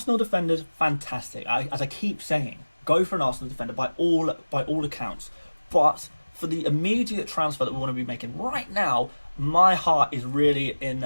defenders, fantastic. As I keep saying, go for an Arsenal defender by all accounts. But for the immediate transfer that we want to be making right now, my heart is really in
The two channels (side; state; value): both; inverted; correlation -1.00